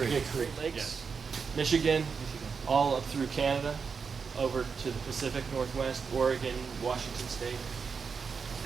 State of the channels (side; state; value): left; quieter; 5.6 dB